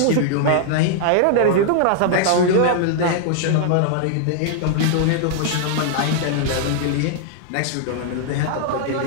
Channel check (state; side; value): different; both; correlation -0.01